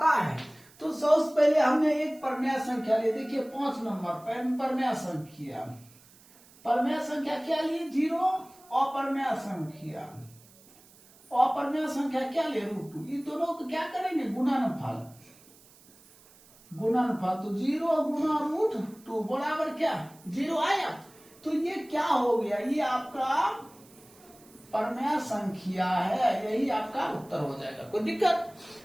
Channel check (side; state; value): right; noise; hiss, 26 dB below the sound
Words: है। तो सबसे पहले हमने एक परमेय संख्या ली, देखिए 5 नंबर परमेय संख्या, परमेय संख्या क्या लिए 0, अपरमेय संख्या, अपरमेय संख्या क्या ले √2, इन दोनों को क्या करेंगे गुणनफल, गुणनफल। तो 0 गुणा √2 बराबर क्या 0 आया। तो ये क्या हो गया, ये आपका परमेय संख्या है, यही आपका उत्तर हो जाएगा, कोई दिक्कत।